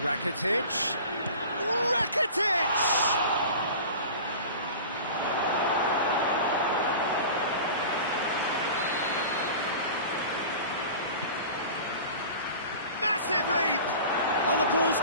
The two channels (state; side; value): inverted; both; correlation -0.38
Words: Rakitic. Rakitic! Massive leap! Oh, the ball's